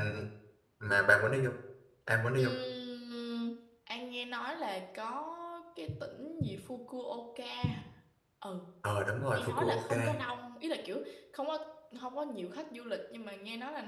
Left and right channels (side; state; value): both; identical; correlation 1.00